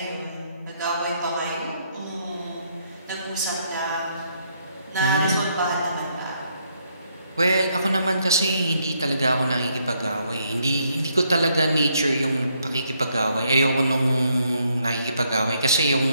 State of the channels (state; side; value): inverted; both; correlation -0.73